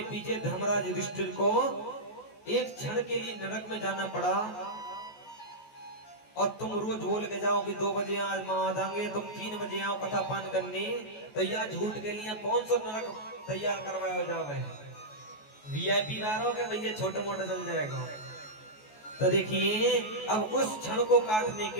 पीछे धर्मराज युधिष्ठिर को एक क्षण के लिए नरक में जाना पड़ा। और तुम रोज बोल के जाओ कि 2 बजे आज माँ देंगे, तुम 3 बजे आओ कथा पान करने, तो यह झूठ के लिए कौन सा नरक तैयार करवाया जावे? वीआईपी ना रहोगे भैया, छोटे मोटे चल जाएगा। तो देखिए, अब उस क्षण को काटने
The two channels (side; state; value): right; late; 14 ms